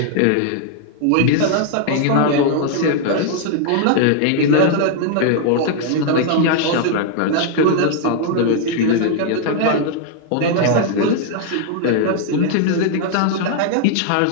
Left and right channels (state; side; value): different; both; correlation 0.00